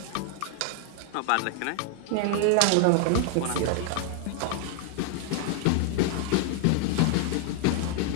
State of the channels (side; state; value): both; different; correlation 0.00